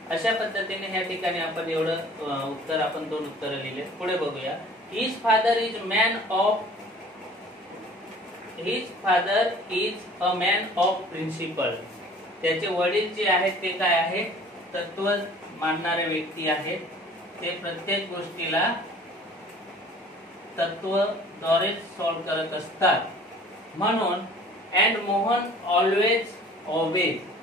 अशा पद्धतीने ह्या ठिकाणी आपण एवढं उत्तर आपण दोन उत्तर लिहिले. पुढे बघूया. His father is a man of principle. त्याचे वडील जे आहेत ते काय आहे? मानणारे व्यक्ती आहेत ते प्रत्येक गोष्टीला तत्वद्वारे सॉल्व्ह करत असतात. म्हणून and Mohan always obeys.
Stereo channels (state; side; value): normal; both; correlation 0.49